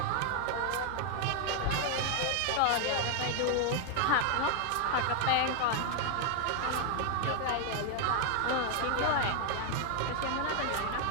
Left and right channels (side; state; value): both; different; correlation 0.00